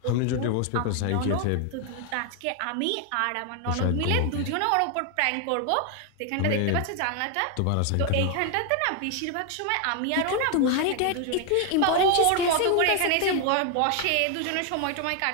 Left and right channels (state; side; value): different; both; correlation 0.00